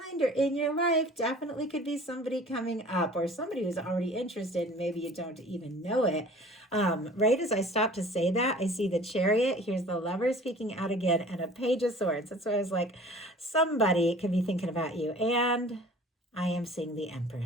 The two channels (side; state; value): both; normal; correlation 0.46